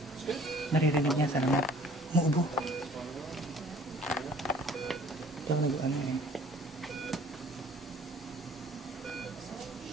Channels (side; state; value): both; normal; correlation 0.53